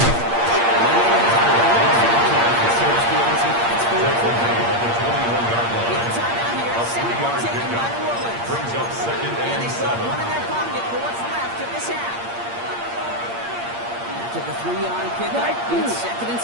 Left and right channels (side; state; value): left; late; 8.6 ms